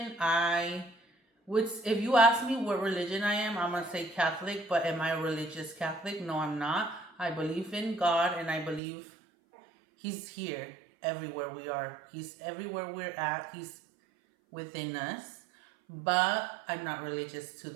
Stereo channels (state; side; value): drops out; left; at 8.8 s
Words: I would, if you ask me what religion I am, I'm gonna say Catholic. But am I a religious Catholic? No, I'm not. I believe in God, and I believe He's here everywhere we are. He's everywhere we're at. He's within us. But I'm not religious to